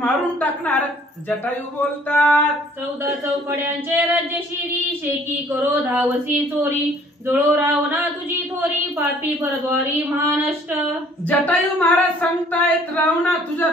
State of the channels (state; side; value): normal; both; correlation 0.57